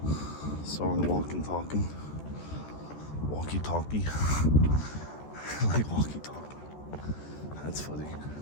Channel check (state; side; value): late; right; 14 ms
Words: Soren walking talking. Walkie talkie. Like walkie talkie. That's funny.